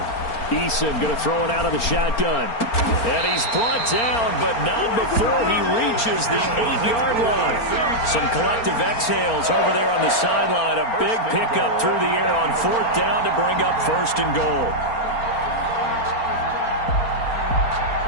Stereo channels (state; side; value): late; right; 4.3 ms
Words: Eason going to throw it out of the shotgun. And he's brought down, but not before he reaches the 8-yard line. Some collective exhales over there on the sideline. A big pickup through the air on 4th down to bring up 1st and goal.